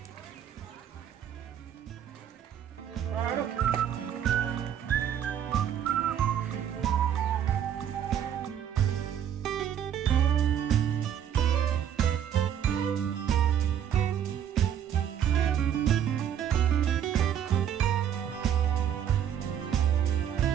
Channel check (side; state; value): left; quieter; 9.5 dB